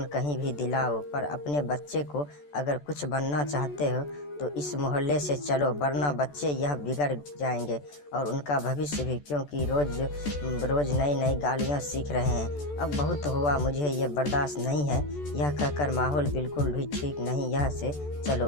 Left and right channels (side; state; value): right; late; 14 ms